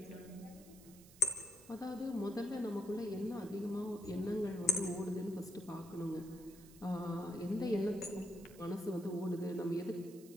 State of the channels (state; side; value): noise; right; hiss, 21 dB below the sound